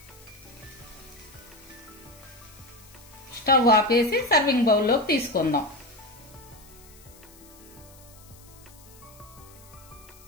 స్టవ్ ఆపేసి సర్వింగ్ బౌల్లోకి తీసుకుందాం.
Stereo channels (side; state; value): left; noise; hiss, 23 dB below the sound